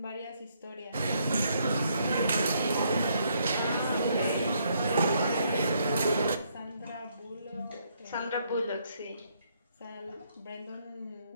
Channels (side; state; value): both; inverted; correlation -0.72